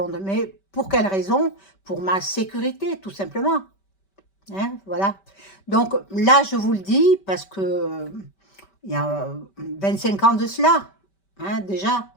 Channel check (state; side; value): late; right; 5.2 ms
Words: mais pour quelle raison? Pour ma sécurité, tout simplement. Hein, voilà. Donc là, je vous le dis parce que il y a 25 ans de cela, hein, déjà.